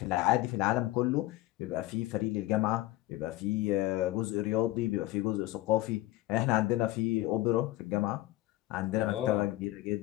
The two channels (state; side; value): quieter; right; 17.0 dB